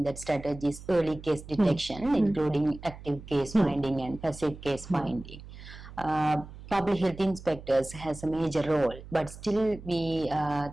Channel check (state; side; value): noise; right; hum, 15 dB below the sound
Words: that strategies early case detection, including active case finding and passive case finding. Public health inspectors has a major role, but still we